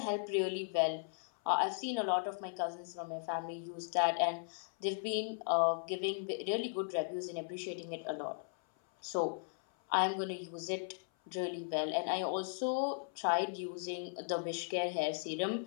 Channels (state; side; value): silent; right; 53 dB below the other